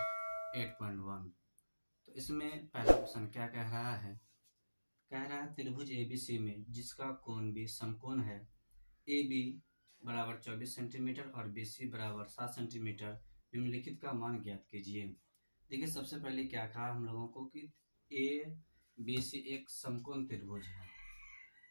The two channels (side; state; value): both; inverted; correlation -1.00